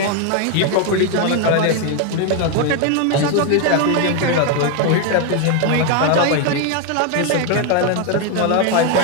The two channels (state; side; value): different; both; correlation 0.01